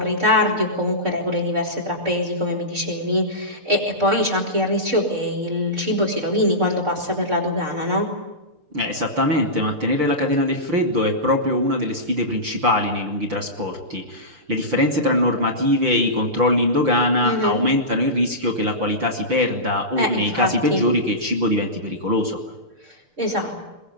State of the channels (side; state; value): left; late; 6.7 ms